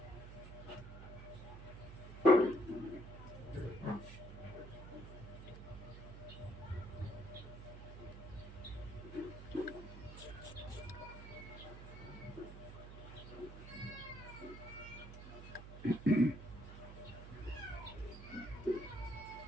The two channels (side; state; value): right; noise; hum, 11 dB below the sound